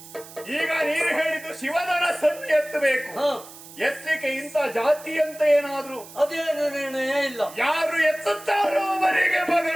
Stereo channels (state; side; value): noise; right; hiss, 18 dB below the sound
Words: ಈಗ ನೀನು ಹೇಳಿದ್ದು ಶಿವಧನಸ್ಸನ್ನು ಎತ್ತಬೇಕು. ಎತ್ತಲಿಕ್ಕೆ ಇಂಥ ಜಾತಿ ಅಂತ ಏನಾದ್ರು ಅದೇನು ನಿರ್ಣಯ ಇಲ್ಲ. ಯಾರು ಎತ್ತುತ್ತಾರೋ ಅವರಿಗೆ